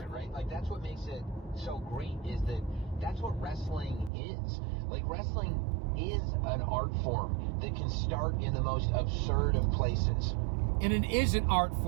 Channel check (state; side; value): drops out; left; at 4.1 s